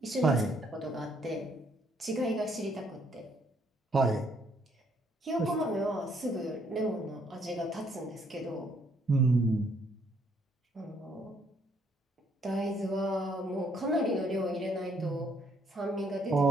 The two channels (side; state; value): both; normal; correlation 0.68